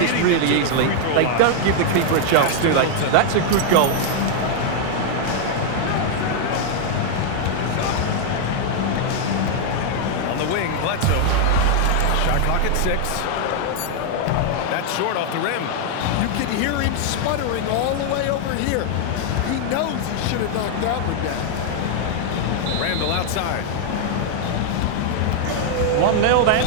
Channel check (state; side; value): different; both; correlation 0.00